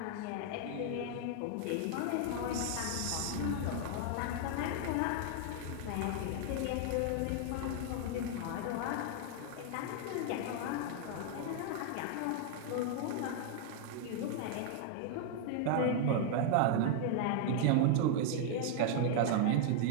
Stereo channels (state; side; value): different; both; correlation 0.00